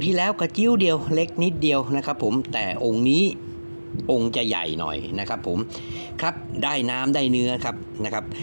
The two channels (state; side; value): inverted; both; correlation -1.00